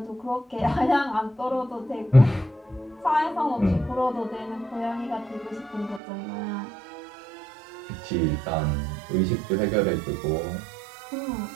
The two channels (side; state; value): left; drops out; at 6.0 s